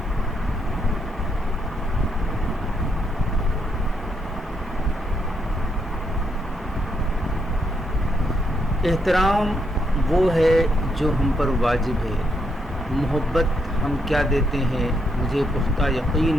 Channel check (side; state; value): both; normal; correlation 0.78